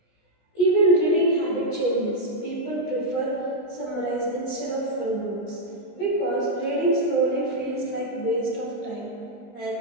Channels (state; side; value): late; right; 19 ms